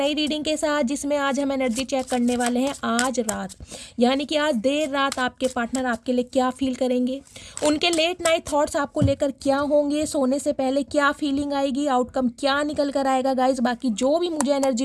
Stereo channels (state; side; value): identical; both; correlation 1.00